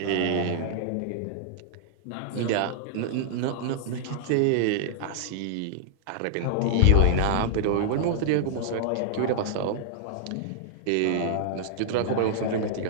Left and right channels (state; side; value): different; both; correlation -0.01